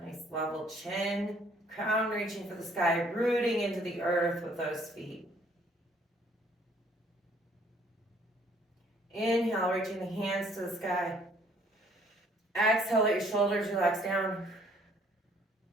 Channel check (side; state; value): both; normal; correlation 0.61